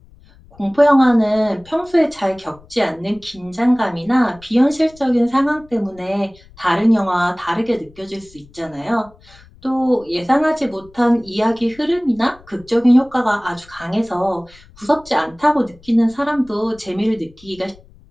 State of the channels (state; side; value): noise; left; rumble, 25 dB below the sound